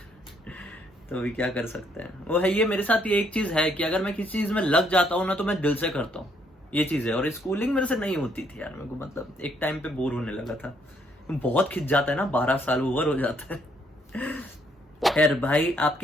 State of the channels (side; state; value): both; normal; correlation 0.70